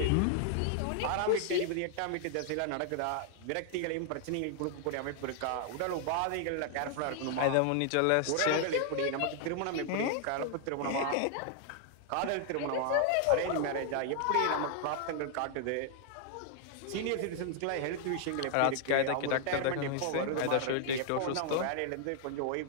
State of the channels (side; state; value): both; different; correlation 0.00